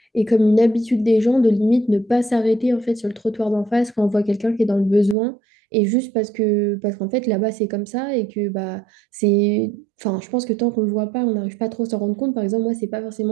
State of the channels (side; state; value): left; drops out; at 5.2 s